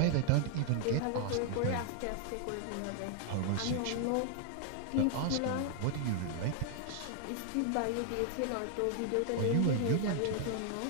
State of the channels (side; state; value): both; different; correlation 0.00